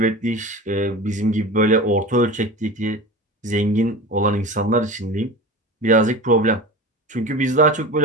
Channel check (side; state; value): both; normal; correlation 0.31